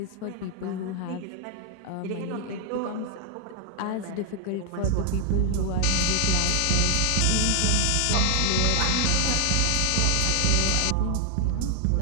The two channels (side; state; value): both; different; correlation 0.00